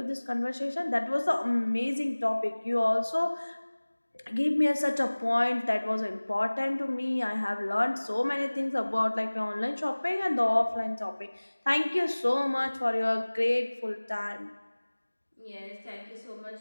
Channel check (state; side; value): inverted; both; correlation -1.00